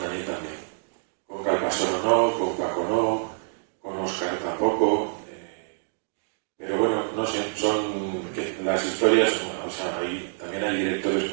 Daniel también. Con Calpasoro no, con Paco no, con Óscar tampoco. Pero bueno, no sé, son que las historias, o sea, también hay directores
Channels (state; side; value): silent; left; digital silence